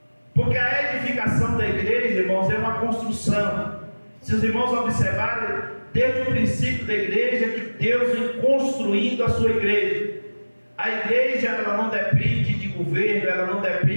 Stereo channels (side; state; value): both; inverted; correlation -1.00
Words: Porque a edificação da igreja, irmãos, é uma construção. Se os irmãos observarem, desde o princípio da igreja, que Deus vem construindo a sua igreja. A igreja ela não depende de governo, ela não